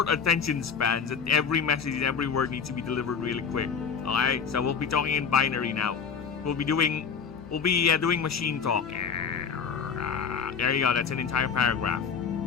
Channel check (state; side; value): quieter; right; 6.3 dB